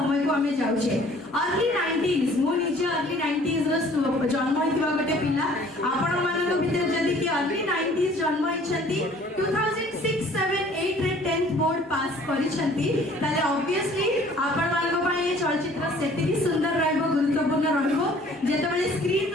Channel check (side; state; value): both; normal; correlation 0.54